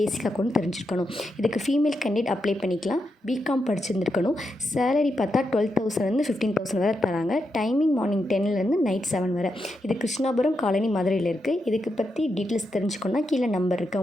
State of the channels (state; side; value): normal; both; correlation 0.85